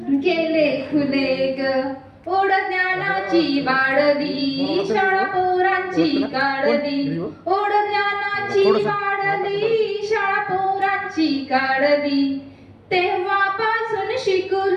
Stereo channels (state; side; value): identical; both; correlation 1.00